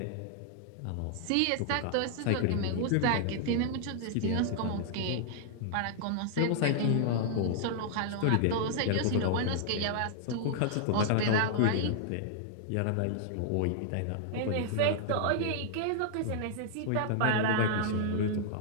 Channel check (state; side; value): different; both; correlation -0.01